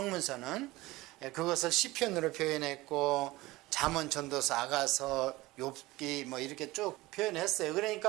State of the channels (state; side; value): quieter; left; 19.6 dB